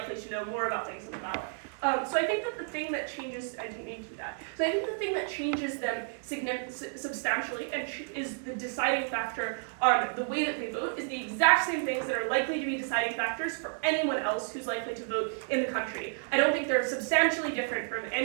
to know more about things on the ballot. So I think that the thing that changes, I didn't mean to do that. So I think the thing that changes them substantially and is the deciding factor on the way that they vote is the exact same things that are likely to be deciding factors for anyone else who's likely to vote in the country. I don't think they're substantially different from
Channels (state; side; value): silent; left; 55 dB below the other